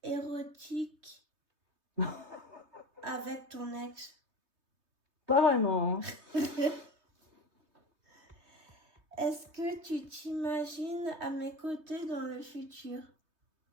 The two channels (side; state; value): left; late; 3.2 ms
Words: érotiques avec ton ex? Pas vraiment. Est-ce que tu t'imagines à mes côtés dans le futur?